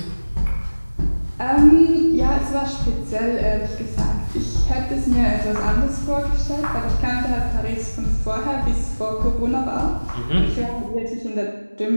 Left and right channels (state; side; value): inverted; both; correlation -1.00